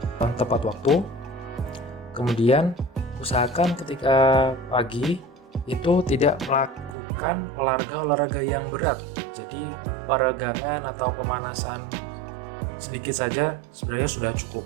tepat waktu. Kemudian usahakan ketika pagi itu tidak melakukan olahraga yang berat. Jadi peregangan atau pemanasan sedikit saja sebenarnya sudah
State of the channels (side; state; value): left; drops out; at 7.0 s